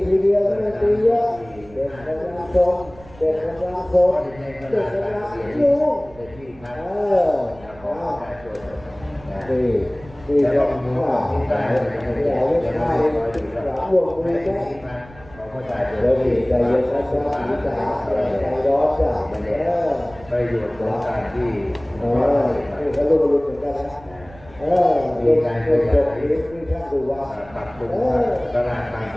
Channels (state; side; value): noise; right; rumble, 22 dB below the sound